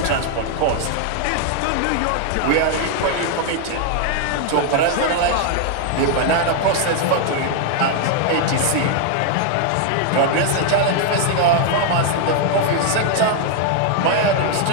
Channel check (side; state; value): both; different; correlation 0.00